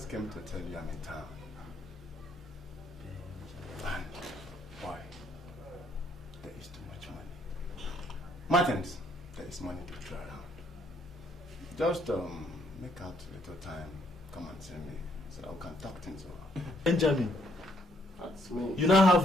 came to tell you I'm in town. And why? There is too much money. Martins, there is money to throw around. Just make out a little time, come and see me, so that we can talk things over. Benjamin, that's me. You now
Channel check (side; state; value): both; normal; correlation 0.69